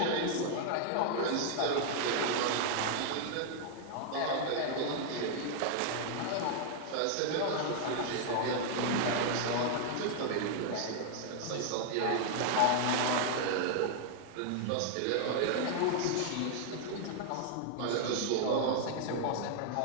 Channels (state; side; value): different; both; correlation 0.00